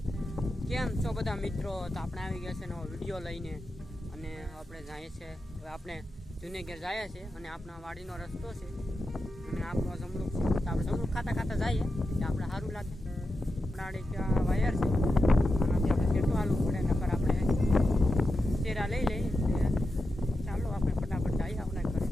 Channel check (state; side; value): normal; both; correlation 0.89